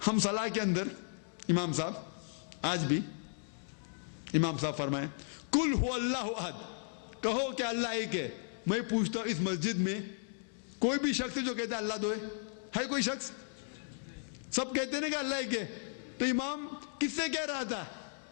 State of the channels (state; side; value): silent; right; digital silence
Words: ہم صلاح کے اندر امام صاحب آج بھی امام صاحب فرمائیں کل ہو اللہ احد، کہو کہ اللہ ایک ہے۔ میں پوچھتا ہوں اس مسجد میں کوئی بھی شخص ہے جو کہتا ہے اللہ دو ہے کوئی شخص؟ سب کہتے ہیں نا کہ اللہ ایک ہے۔ تو امام کس سے کہہ رہا تھا؟